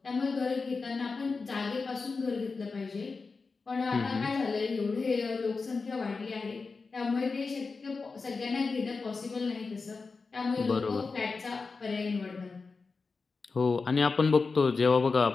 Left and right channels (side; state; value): right; quieter; 4.4 dB